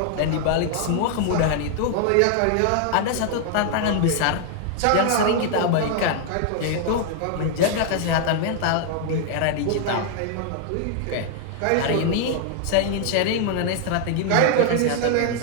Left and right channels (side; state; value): both; different; correlation 0.00